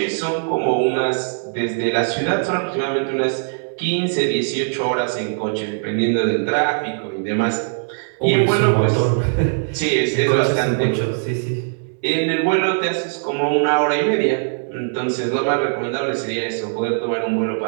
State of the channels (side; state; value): left; silent; 65 dB below the other